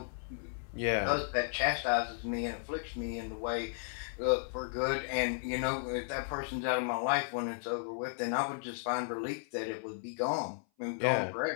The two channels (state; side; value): silent; right; 55 dB below the other